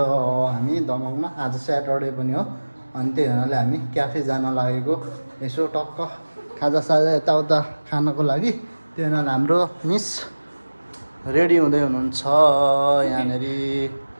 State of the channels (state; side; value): inverted; both; correlation -1.00